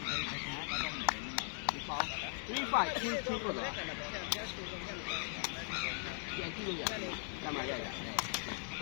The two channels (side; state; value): right; silent; 51 dB below the other